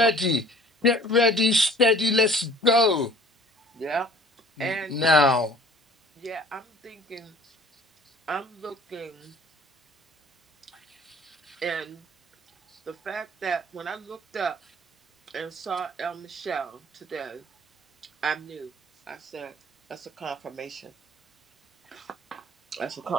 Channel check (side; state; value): both; normal; correlation 0.50